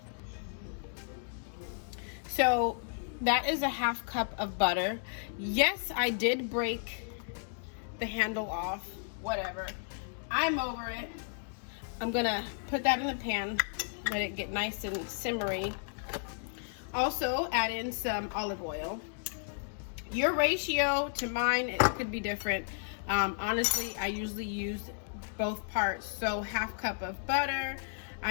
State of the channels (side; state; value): right; silent; digital silence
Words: So that is 1/2 cup of butter. Yes, I did break the handle off, whatever. I'm over it. I'm gonna put that in the pan, let it get nice and simmery. Also add in some olive oil. Your ratio to mine, it could be different. Honestly, I usually use both parts. So 1/2 cup of butter.